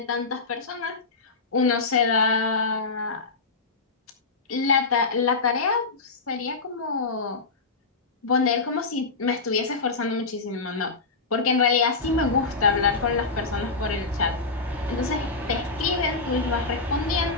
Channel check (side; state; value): right; quieter; 3.9 dB